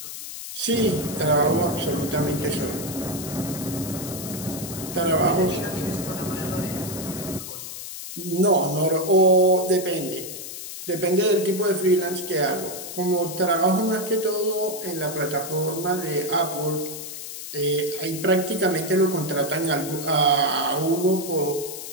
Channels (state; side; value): noise; left; hiss, 9 dB below the sound